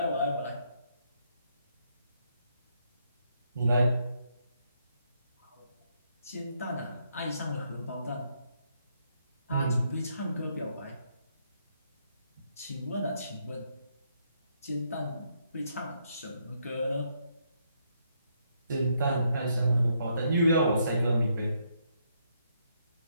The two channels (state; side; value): inverted; both; correlation -0.75